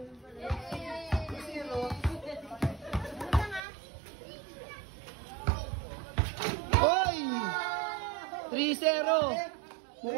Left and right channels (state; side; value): drops out; left; at 3.6 s